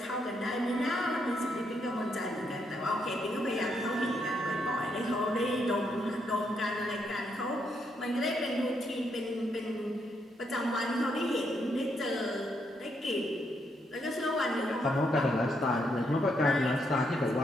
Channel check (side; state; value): both; normal; correlation 0.77